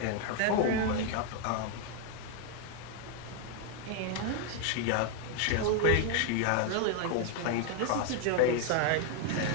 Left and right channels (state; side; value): different; both; correlation 0.01